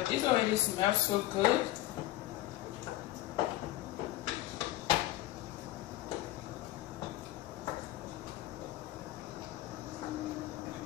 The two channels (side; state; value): right; quieter; 15.7 dB